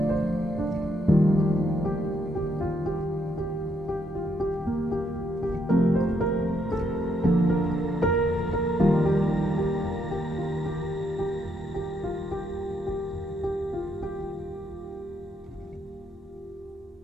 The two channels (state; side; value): normal; both; correlation 0.76